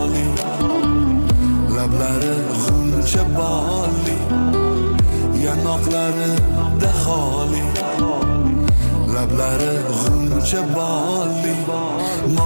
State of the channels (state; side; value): inverted; both; correlation -1.00